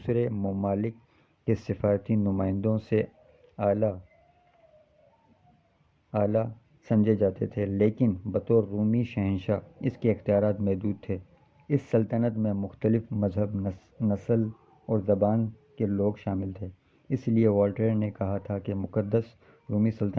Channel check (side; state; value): both; identical; correlation 1.00